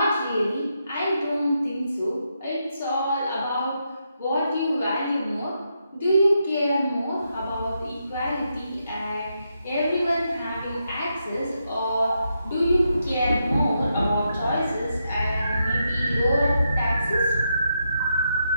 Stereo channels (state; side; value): inverted; both; correlation -0.82